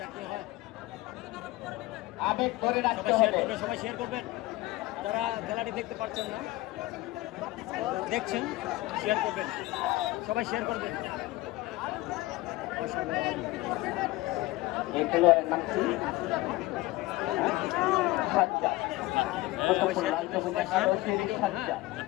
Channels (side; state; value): right; quieter; 19.3 dB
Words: কি হয়। আবেগ ধরে রাখতে সবাই শেয়ার হবে। করবেন, সবাই শেয়ার করবেন। যারা খেলাটি দেখতে পাচ্ছেন না, দেখছেন, শেয়ার করবেন, সবাই শেয়ার করবেন। অসাধারণ এই খেলোয়াড়ের নাম কি? সাজ্জাদ। কুতুবুল লাল সবুজ একাদশের সাজ্জাদ।